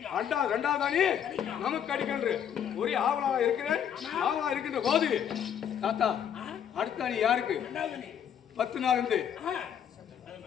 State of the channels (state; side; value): quieter; right; 8.9 dB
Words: ரெண்டாவது அணி நமக்கு கிடைக்கின்ற ஒரே ஆவலா இருக்கிறேன். ஆவலா இருக்கின்ற போது தாத்தா அடுத்த அணி யாருக்கு? 10 நாள் இருந்து